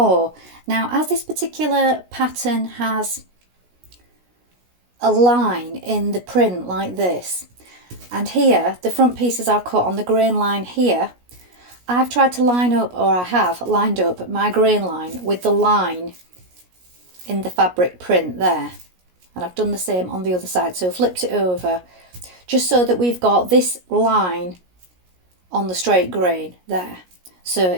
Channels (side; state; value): left; late; 17 ms